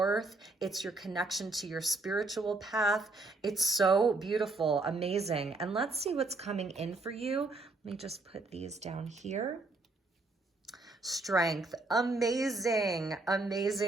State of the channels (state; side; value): quieter; left; 3.2 dB